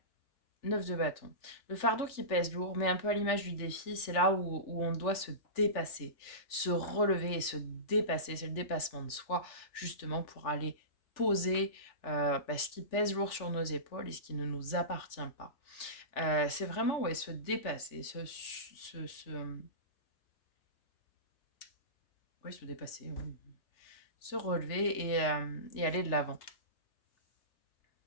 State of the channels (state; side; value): late; right; 3.4 ms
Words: 9 de bâton. Le fardeau qui pèse lourd, mais un peu à l'image du défi, c'est là où on doit se dépasser, se relever et se dépasser. C'est le dépassement de soi, justement, pour aller poser ce qui pèse lourd sur nos épaules et ce qui ne nous appartient pas. C'est vraiment ouais, se dépasser, ouais, se dépasser, ouais. Se relever et aller de l'avant.